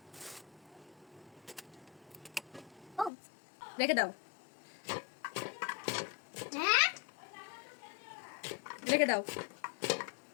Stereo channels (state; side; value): drops out; right; at 3.1 s